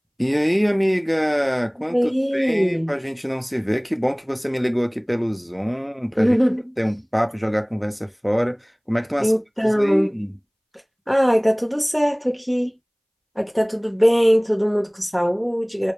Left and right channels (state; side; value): identical; both; correlation 1.00